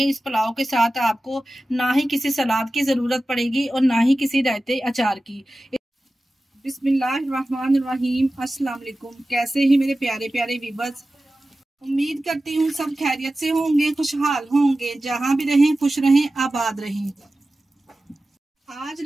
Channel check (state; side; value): normal; both; correlation 0.95